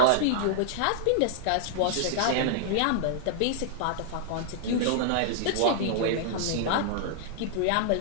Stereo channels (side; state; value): both; different; correlation -0.01